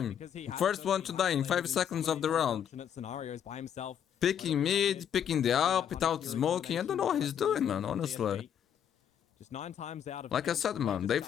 First one to die in 5 seconds of the round. Scenarios by himself. Picking mid, picking the up without smoking. I don't know what he's doing, man, honestly. Just 9 times out of... Like I said, man, they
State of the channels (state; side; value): quieter; right; 9.0 dB